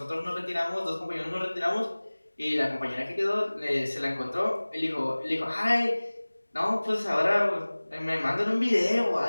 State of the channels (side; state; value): both; inverted; correlation -1.00